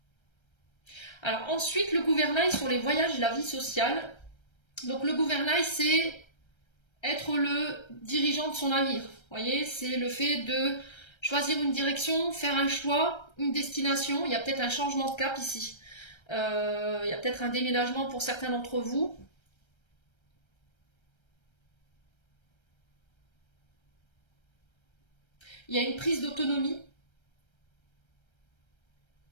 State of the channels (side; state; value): right; late; 1.3 ms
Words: Alors ensuite, le gouvernail sur les voyages et la vie sociale. Donc le gouvernail, c'est être le dirigeant de son navire. Vous voyez, c'est le fait de choisir une direction, faire un choix, une destination. Il y a peut-être un changement de cap ici. Il y a peut-être un déménagement pour certains d'entre vous. Il y a une prise d'autonomie.